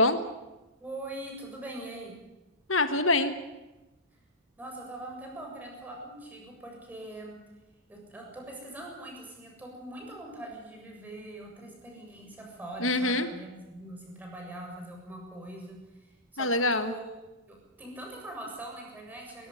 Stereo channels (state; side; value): normal; both; correlation -0.18